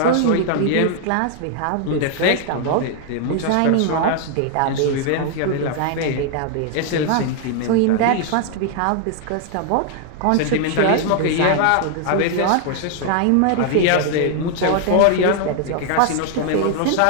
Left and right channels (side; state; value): both; different; correlation 0.00